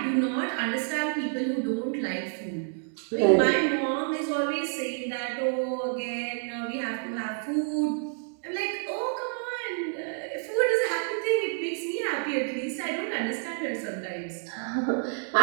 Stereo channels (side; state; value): left; silent; 59 dB below the other